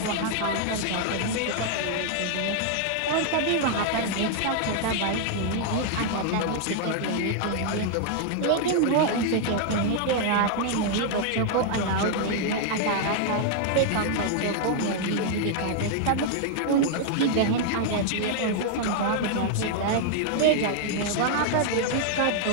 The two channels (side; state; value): both; different; correlation 0.00